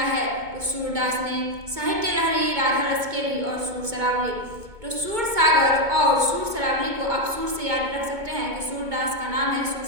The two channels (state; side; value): late; left; 2.2 ms